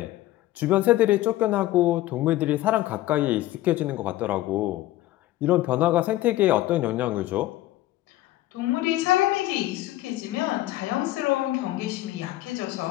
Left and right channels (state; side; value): quieter; right; 15.8 dB